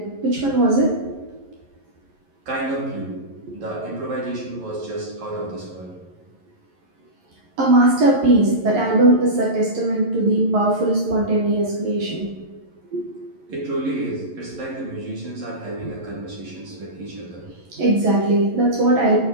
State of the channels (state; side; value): late; left; 11 ms